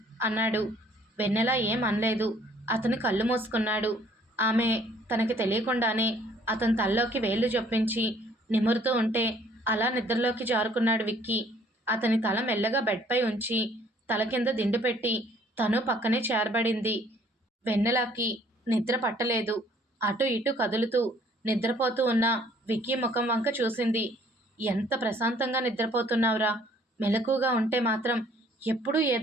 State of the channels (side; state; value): both; normal; correlation 0.59